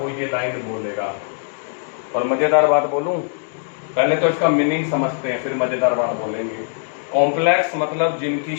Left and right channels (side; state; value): right; silent; digital silence